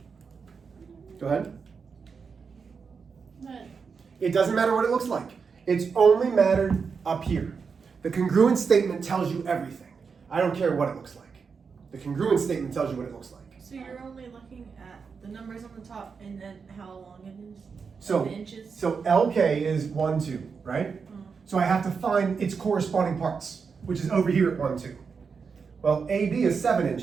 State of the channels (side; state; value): left; quieter; 5.6 dB